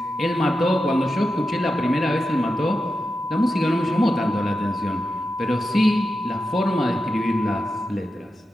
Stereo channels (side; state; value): both; normal; correlation 0.89